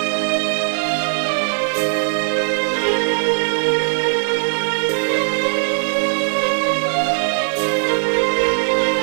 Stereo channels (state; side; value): silent; left; 67 dB below the other